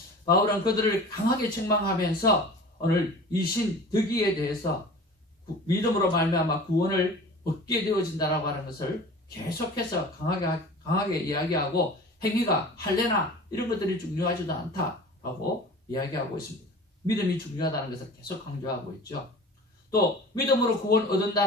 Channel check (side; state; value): both; normal; correlation 0.40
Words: 바울은 그들을 강하게 책망하면서 오늘 이 신 덕이에 대해서 믿음으로 말미암아 구원을 얻게 되어진다라고 하는 것을 계속해서 강하게 이야기하고, 행위가 할례나 이런 것들이 중요하지도 않다라고 이야기하고 있습니다. 믿음이 중요하다는 것을 계속 강조하고 있죠. 또 믿음으로 구원